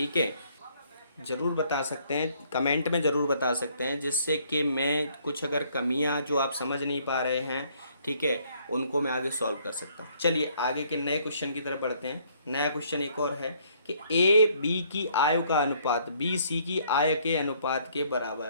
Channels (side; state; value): both; inverted; correlation -0.65